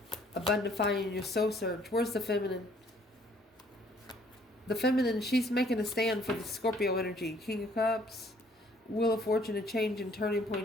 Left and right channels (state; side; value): normal; both; correlation 0.61